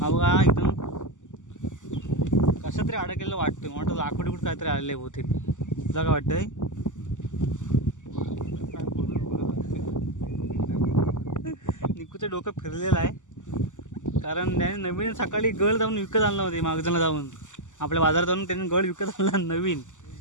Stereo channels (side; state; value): right; late; 0.86 ms